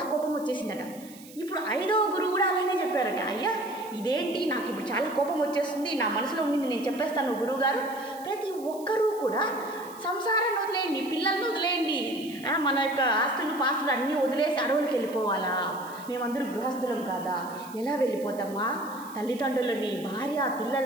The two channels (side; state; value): right; noise; hiss, 20 dB below the sound